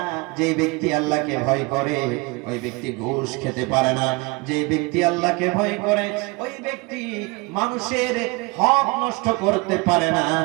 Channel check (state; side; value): quieter; left; 26.0 dB